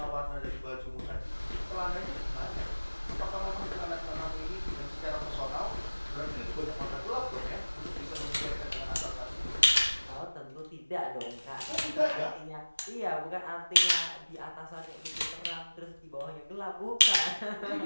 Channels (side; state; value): both; inverted; correlation -1.00